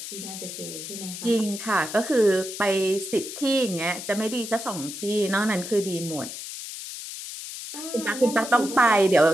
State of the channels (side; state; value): left; noise; hiss, 9 dB below the sound